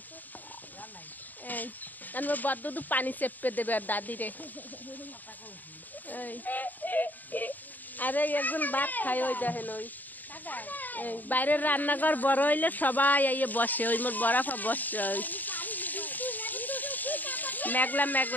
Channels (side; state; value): right; late; 0.085 ms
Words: এই মোর বড় দুধ পানি চেপে দেবে আর দাদিরে। আরে একজন ভাত খায়, ওই দেখেন ওই বাইরের রান্নাঘর বড় হইলে সবাই আইয়ে বসে। ওই মোর বরাফা বসছে। ওই মেঘলা